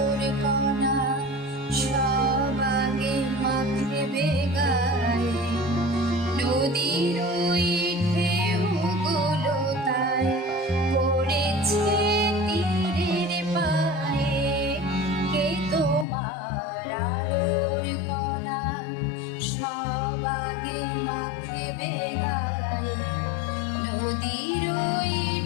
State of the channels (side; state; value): right; drops out; at 16.1 s